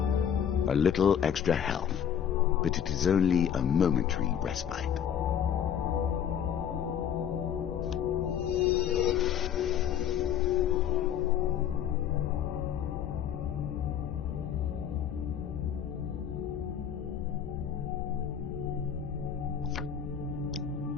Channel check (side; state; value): right; quieter; 8.8 dB